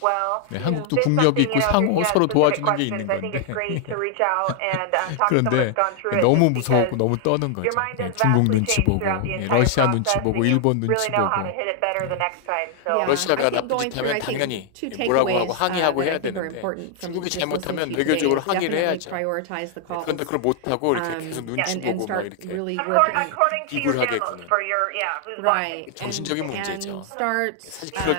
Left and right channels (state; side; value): different; both; correlation 0.00